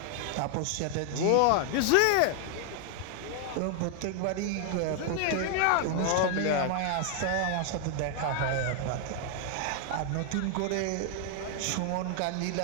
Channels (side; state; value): both; different; correlation 0.00